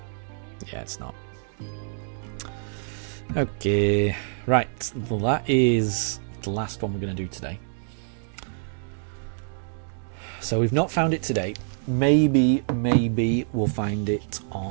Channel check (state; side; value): silent; left; digital silence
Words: Yeah, it's not. Okay, right. Well, that is the last one we're going to do today. So we've not found it today. Maybe we'll find it